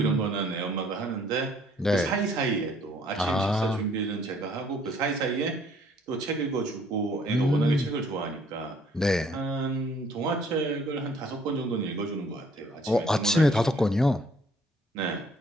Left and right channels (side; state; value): both; normal; correlation 0.61